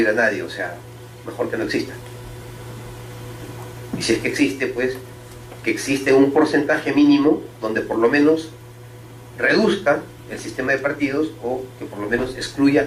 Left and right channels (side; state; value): both; identical; correlation 1.00